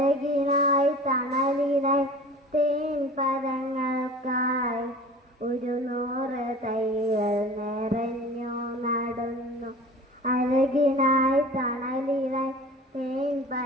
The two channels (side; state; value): both; normal; correlation 0.40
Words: തണലിനായി തേൻ പരങ്ങൾക്കായി 100 തൈകൾ നിറഞ്ഞു നടുന്നു, അഴകിനായി തണലിനായി തേൻ